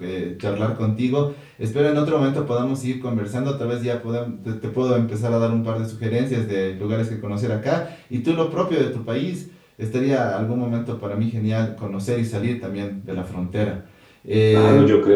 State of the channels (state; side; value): identical; both; correlation 1.00